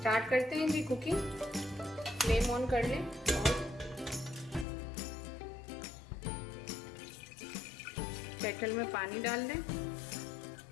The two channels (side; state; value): right; drops out; at 4.7 s